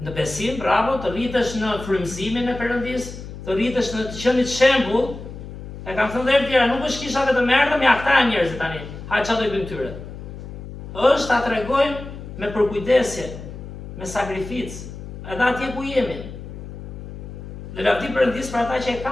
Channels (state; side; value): noise; left; hum, 11 dB below the sound